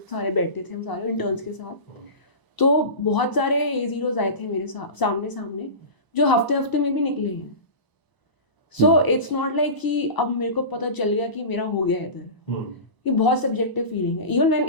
सारे बैठते थे हम सारे इंटर्न्स के साथ. तो बहुत सारे A0 आए थे मेरे सामने जो हफ्ते में भी निकले हैं. सो इट्स नॉट लाइक कि अब मेरे को पता चल गया कि मेरा हो गया इधर. ये बहुत सब्जेक्टिव फीलिंग है. Even when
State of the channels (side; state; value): right; late; 1.0 ms